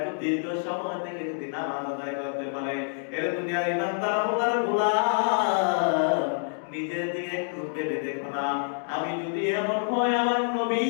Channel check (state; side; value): silent; right; digital silence